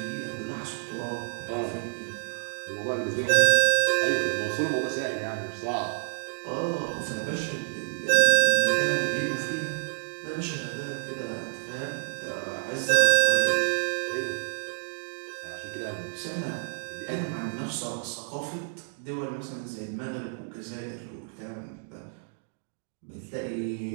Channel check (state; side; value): silent; left; digital silence